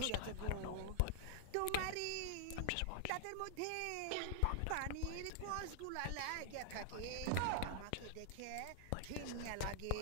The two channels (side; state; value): both; different; correlation -0.01